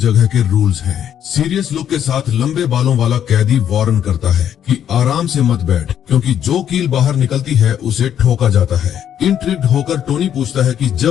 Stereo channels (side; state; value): right; quieter; 9.7 dB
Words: के रूल्स हैं। सीरियस लुक के साथ लंबे बालों वाला कैदी वार्न करता है कि आराम से मत बैठ, क्योंकि जो कील बाहर निकलती है उसे ठोका जाता है। इंट्रिग्ड होकर टोनी पूछता है कि